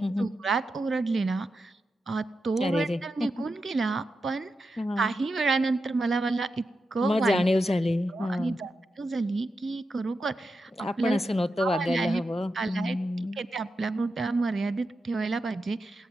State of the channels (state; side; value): normal; both; correlation 0.88